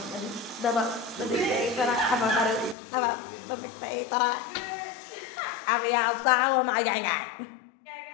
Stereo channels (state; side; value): drops out; right; at 2.8 s